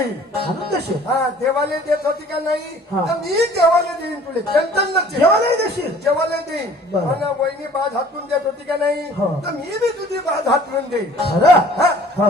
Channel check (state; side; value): normal; both; correlation 0.51